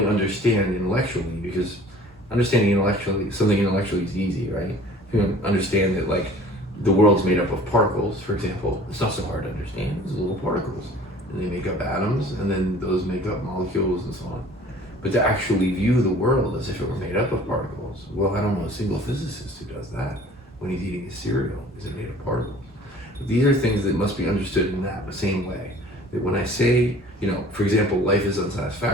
understand intellectually, because understanding intellectually, something intellectually is easy, right? If you understand that, like, the world's made up of particles, for example, it's not so hard to understand. It's little particles, and they make up atoms, and then those make up molecules and so on. But to actually view the world as if it were made up of particles, well, I don't know a single physicist who does that. When he's eating his cereal, is it made of particles? But these are things that must be understood in that the same way. That when I say, you know, for example, life is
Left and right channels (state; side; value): normal; both; correlation 0.48